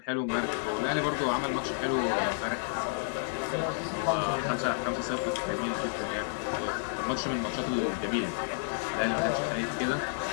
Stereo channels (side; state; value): right; silent; digital silence